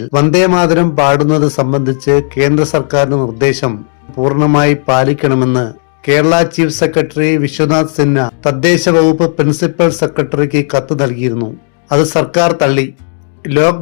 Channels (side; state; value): right; silent; 59 dB below the other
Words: വന്ദേ മാതരം പാടുന്നത് സംബന്ധിച്ച് കേന്ദ്ര സർക്കാരിന്റെ നിർദ്ദേശം പൂർണ്ണമായി പാലിക്കണമെന്ന് കേരള ചീഫ് സെക്രട്ടറി വിശ്വനാഥ് സിൻഹ തദ്ദേശ വകുപ്പ് പ്രിൻസിപ്പൽ സെക്രട്ടറിക്ക് കത്ത് നൽകിയിരുന്നു. അത് സർക്കാർ തള്ളി. ലോക്